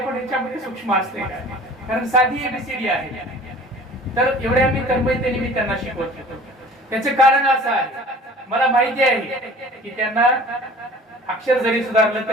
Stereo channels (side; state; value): both; normal; correlation 0.46